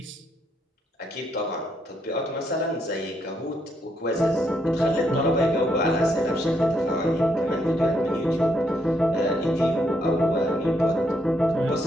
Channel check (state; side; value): normal; both; correlation 0.75